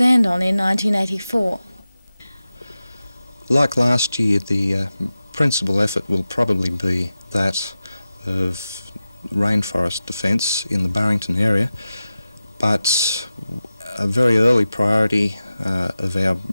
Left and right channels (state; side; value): inverted; both; correlation -0.94